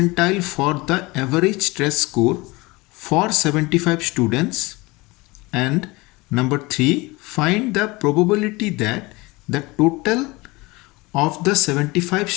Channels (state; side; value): quieter; right; 23.2 dB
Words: for the average stress score for 75 students. And number 3, find the probability that the total of the 75